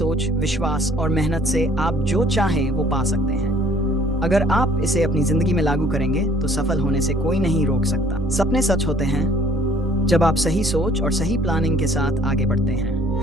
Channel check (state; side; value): normal; both; correlation 0.58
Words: विश्वास और मेहनत से आप जो चाहें वो पा सकते हैं। अगर आप इसे अपनी जिंदगी में लागू करेंगे तो सफल होने से कोई नहीं रोक सकता। सपने सच होते हैं जब आप सही सोच और सही प्लानिंग के साथ आगे बढ़ते